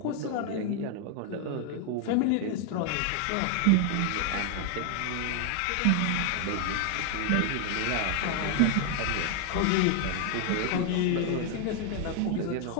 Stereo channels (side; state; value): both; different; correlation 0.00